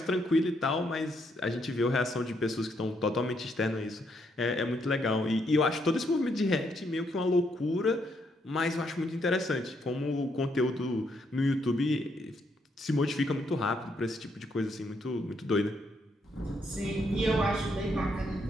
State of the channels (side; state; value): both; normal; correlation 0.75